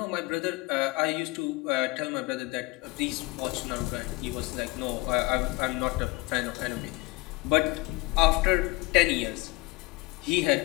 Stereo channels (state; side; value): quieter; right; 23.3 dB